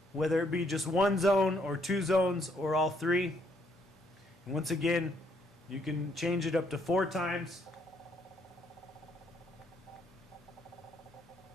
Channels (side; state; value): both; normal; correlation 0.70